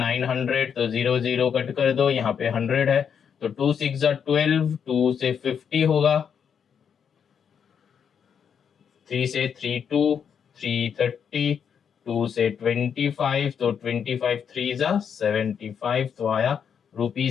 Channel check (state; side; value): quieter; right; 7.4 dB